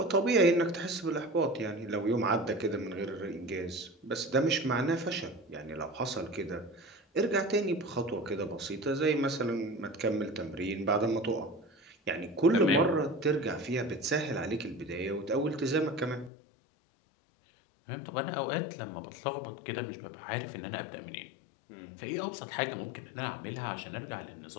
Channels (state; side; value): drops out; right; at 16.3 s